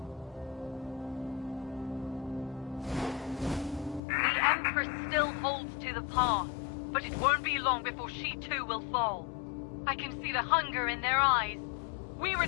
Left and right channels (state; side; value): drops out; right; at 4.0 s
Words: The Empress still holds to the path, but it won't be long before she too will fall. I can see the hunger in their eyes. We